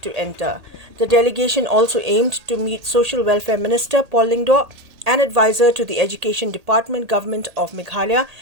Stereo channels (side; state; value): left; late; 1.8 ms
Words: to enter. The delegation also aimed to meet Social Welfare Minister Paul Lingdor and advisor to the Education Department Government of Meghalaya,